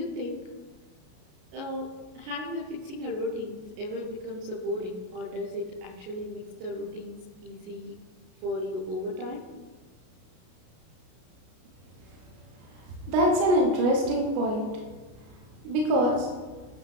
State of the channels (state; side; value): late; left; 33 ms